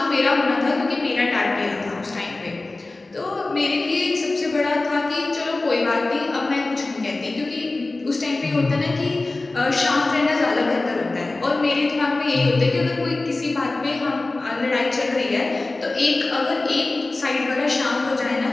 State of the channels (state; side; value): quieter; right; 3.2 dB